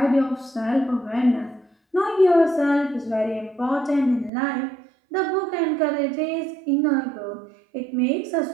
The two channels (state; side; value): drops out; left; at 4.3 s